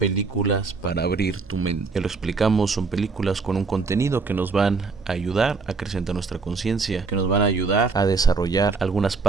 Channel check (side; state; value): left; quieter; 4.5 dB